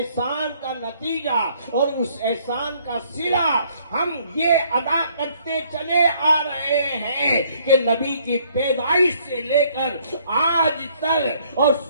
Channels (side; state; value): both; inverted; correlation -0.64